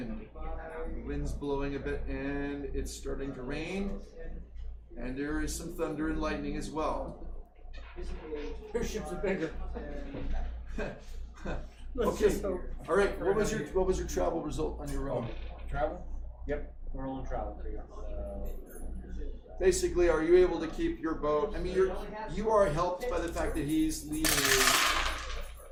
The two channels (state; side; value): identical; both; correlation 1.00